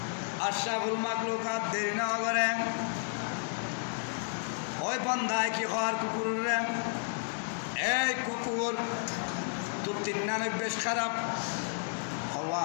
আশরাফুল মাখলুকাত দেরি না করে, ওই বান্দায় কি হওয়ার কুকুর রে, এই কুকুর তোর 93 খারাপ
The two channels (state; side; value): silent; right; 56 dB below the other